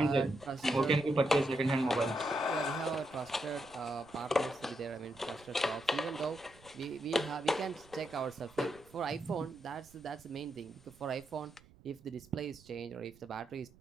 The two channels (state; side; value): noise; right; rumble, 25 dB below the sound